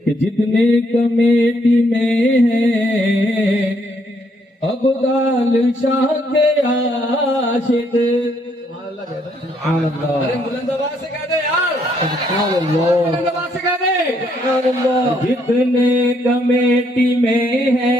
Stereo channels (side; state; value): both; normal; correlation 0.71